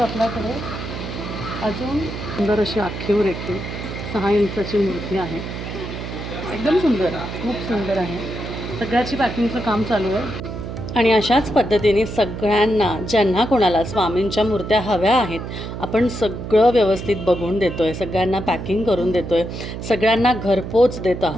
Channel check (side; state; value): right; noise; hum, 7 dB below the sound